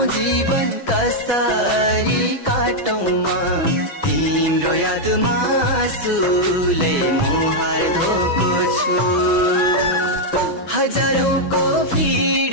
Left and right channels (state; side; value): late; right; 6.1 ms